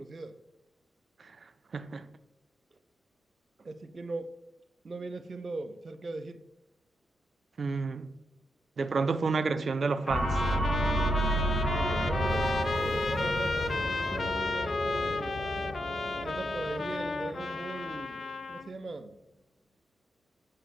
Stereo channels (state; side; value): normal; both; correlation 0.83